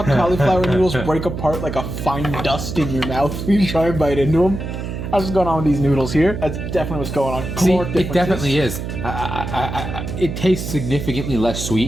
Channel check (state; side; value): noise; right; hum, 6 dB below the sound